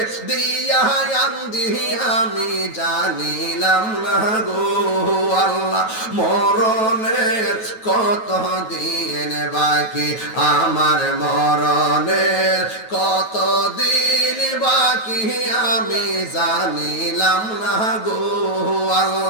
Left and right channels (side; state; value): right; late; 9.2 ms